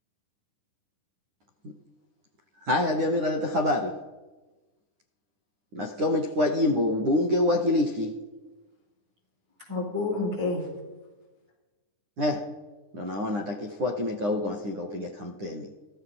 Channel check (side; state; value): left; late; 9.9 ms